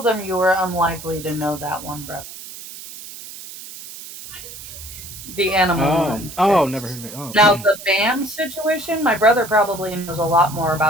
them you were unlikely to know that one, brother. The animal Never Olympics. heard of it. Oh, Now the BAM situation, my brother probably knows a lot more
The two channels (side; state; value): right; noise; hiss, 13 dB below the sound